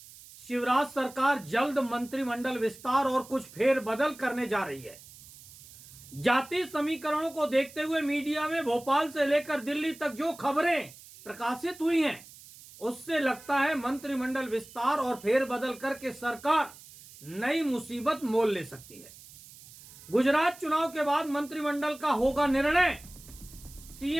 शिवराज सरकार जल्द मंत्रिमंडल विस्तार और कुछ फेरबदल करने जा रही है। जाति समीकरणों को देखते हुए मीडिया में भोपाल से लेकर दिल्ली तक जो खबरें प्रकाशित हुई हैं, उससे लगता है मंत्रिमंडल विस्तार और फेरबदल करके सरकार नई मुसीबत मोल ले सकती है। गुजरात चुनाव के बाद मंत्रिमंडल का होगा निर्णय।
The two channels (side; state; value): right; noise; hiss, 19 dB below the sound